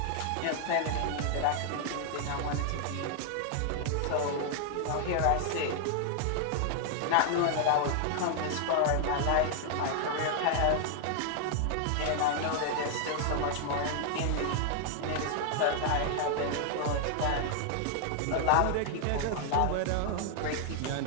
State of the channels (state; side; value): different; both; correlation 0.00